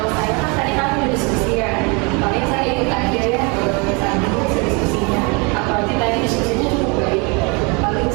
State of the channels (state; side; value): quieter; left; 30.5 dB